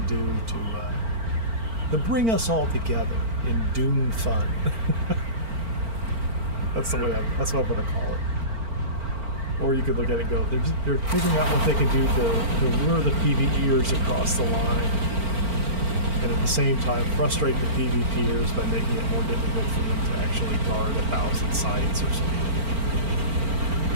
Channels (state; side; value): late; left; 4.4 ms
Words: do to bring us all together in Dune fun. That's what I'm going to call it. Or you could look at it and go, they're figuring out what they can do to lure the PvEers across the line, and at the same time frustrate the PvPers by making it more difficult for them to actually guard 1,000 sites or something.